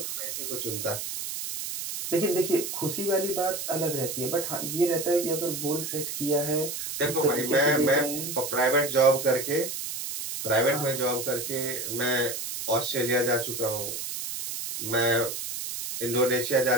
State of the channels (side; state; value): right; noise; hiss, 5 dB below the sound